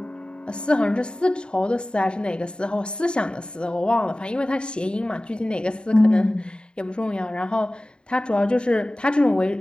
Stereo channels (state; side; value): late; right; 0.051 ms